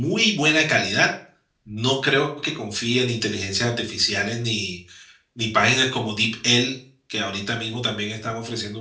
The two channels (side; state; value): both; identical; correlation 1.00